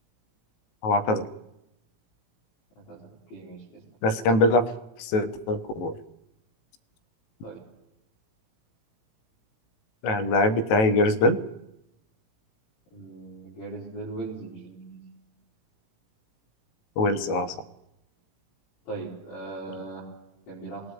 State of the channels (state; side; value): late; right; 18 ms